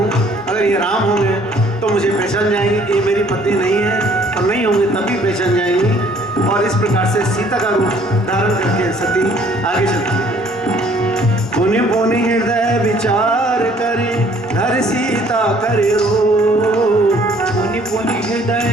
अगर ये राम होंगे तो मुझे पहचान जाएंगे कि ये मेरी पत्नी नहीं है, और नहीं होंगे तब भी पहचान जाएंगी। और इस प्रकार से सीता का रूप धारण करके सती आगे चलती है। पुनि पुनि हृदय विचार करे धर सीता करे रो, पुनि पुनि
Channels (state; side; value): normal; both; correlation 0.59